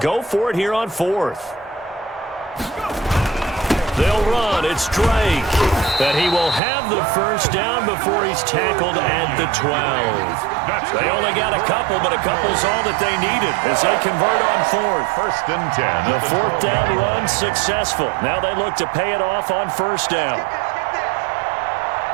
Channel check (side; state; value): left; drops out; at 6.6 s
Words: for it here on 4th. They'll run. It's Drake. And he will have the 1st down before he's tackled at the 12. They only got a couple, but a couple's all that they needed as they convert on 4th. 1st and 10. The 4th down run successful. Now they look to pay it off on 1st down.